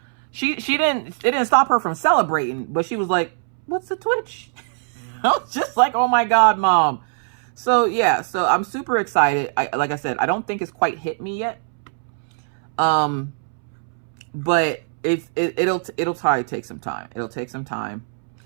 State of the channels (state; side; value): silent; left; 64 dB below the other